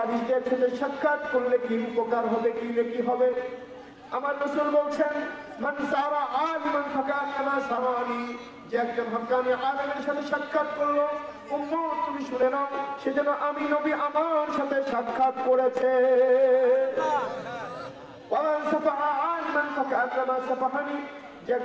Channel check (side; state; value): both; identical; correlation 1.00